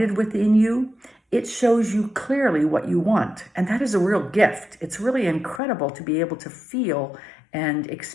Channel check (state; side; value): drops out; right; at 5.6 s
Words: within you, it shows you clearly what you want. And that is a real gift. It's really incredible to be able to feel and